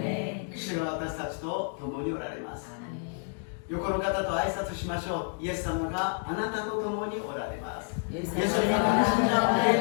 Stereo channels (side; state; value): right; silent; 58 dB below the other